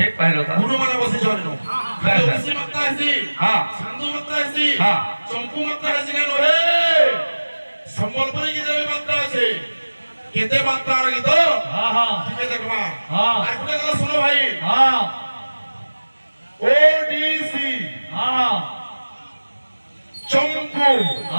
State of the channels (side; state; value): both; inverted; correlation -1.00